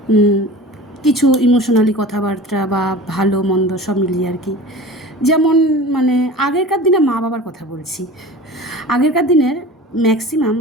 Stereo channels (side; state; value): both; normal; correlation 0.37